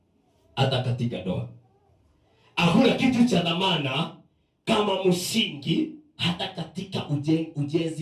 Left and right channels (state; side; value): identical; both; correlation 1.00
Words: Hata katika ndoa hakuna kitu cha dhamana kama msingi, hata katika